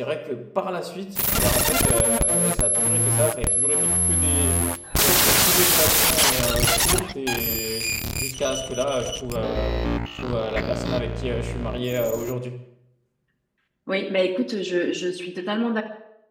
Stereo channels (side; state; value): both; identical; correlation 1.00